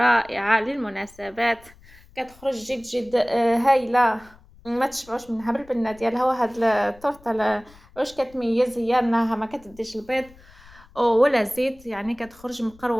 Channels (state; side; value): noise; left; rumble, 25 dB below the sound